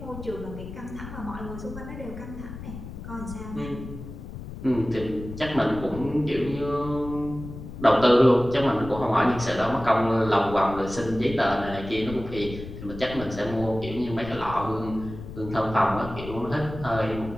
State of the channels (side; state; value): left; noise; rumble, 11 dB below the sound